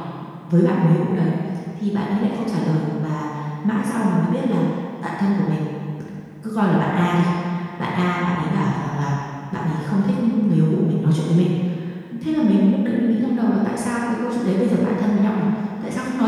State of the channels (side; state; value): both; identical; correlation 1.00